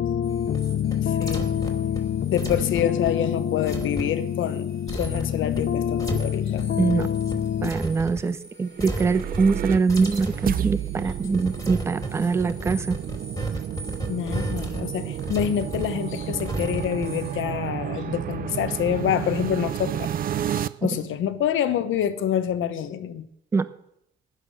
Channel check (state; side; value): normal; both; correlation 0.47